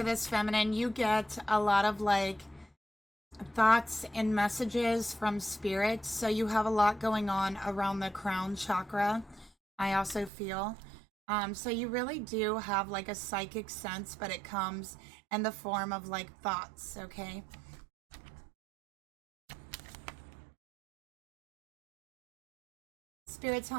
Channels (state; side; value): drops out; left; at 10.3 s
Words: this feminine, you get a lot of like thoughts and messages from spirit. So you have a lot going on around the crown chakra. I also feel. So you really do have like a psychic sense, but it comes in the form of like thoughts, okay? Spirit,